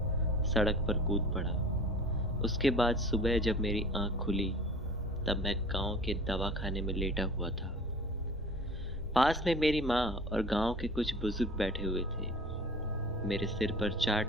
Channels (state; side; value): normal; both; correlation 0.42